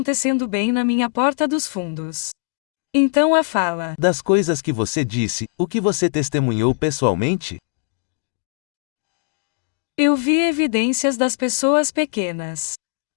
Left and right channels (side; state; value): right; silent; digital silence